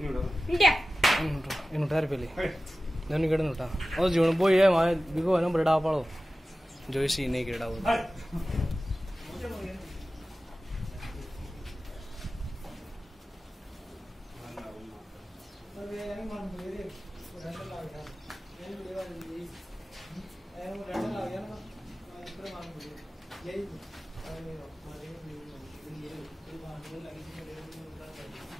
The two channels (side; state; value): both; normal; correlation 0.95